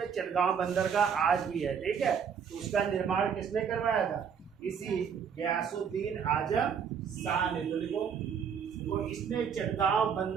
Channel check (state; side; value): quieter; left; 7.1 dB